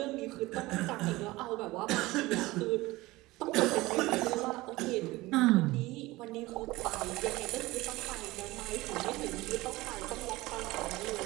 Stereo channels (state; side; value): quieter; left; 19.8 dB